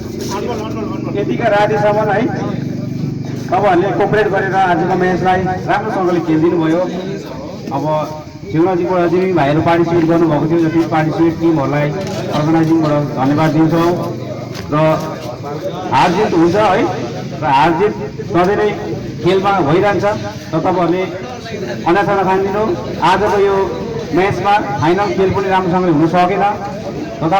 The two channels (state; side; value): identical; both; correlation 1.00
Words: यतिका रातिसम्म है तपाईँहरूले कोअपरेट गरेर आजको म्याचलाई राम्रोसँगले खेलिदिनु भयो अब शिवराजीबाट चाहिँ भाइहरू पार्टिसिपेट गर्नुभएको थियो जति पार्टिसिपेट टिमहरूलाई अर्गनाइजिङबाट धन्यवाद दिन्छौँ र हार जित हुन्छ है र हार जित सधैँ नै खेलमा भइरहन्छ र तपाईँहरूले अन्यथा नखानिदिनु आजको यो म्याचमा फाइनल खेल पनि राम्रोसँगले हुन सकेन